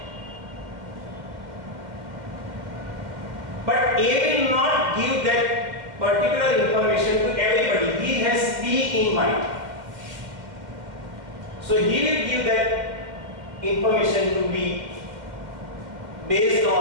but A will not give that particular information to everybody. He has B in mind. So he will give that information to B based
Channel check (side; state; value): left; late; 2.1 ms